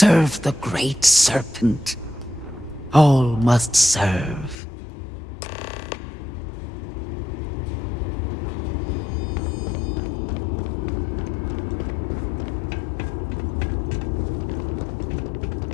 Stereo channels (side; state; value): right; drops out; at 4.5 s